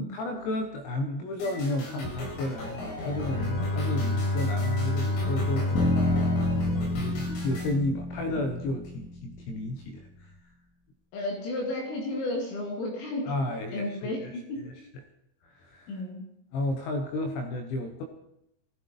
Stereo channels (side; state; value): right; late; 22 ms